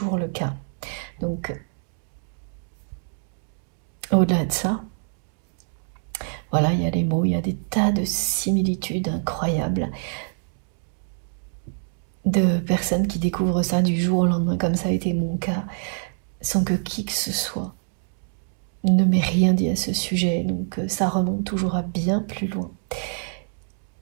le cas. Donc, au-delà de ça, voilà, il y a les mots, il y a des tas de similitudes incroyables de personnes qui découvrent ça du jour au lendemain, comme ça a été mon cas, sans que qui que ce soit ne m'ait rien dit à ce sujet. Donc ça remonte toujours à bien plus loin.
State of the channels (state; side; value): silent; left; digital silence